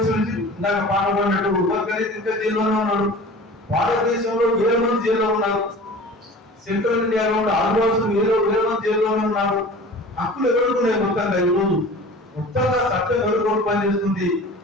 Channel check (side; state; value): both; normal; correlation 0.41